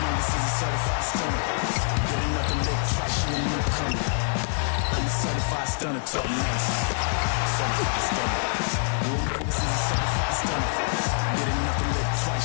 this is a certified stunner. Get enough to live trash, you a newcomer. I'm a certified stunner, talk nice. Certified stunner. You know this is a certified stunner. Get enough to live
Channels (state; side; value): silent; right; 61 dB below the other